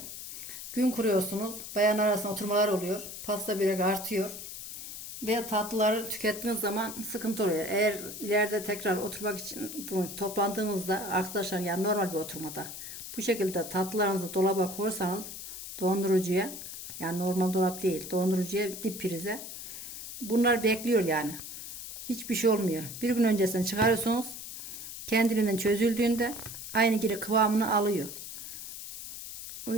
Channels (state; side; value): noise; left; hiss, 10 dB below the sound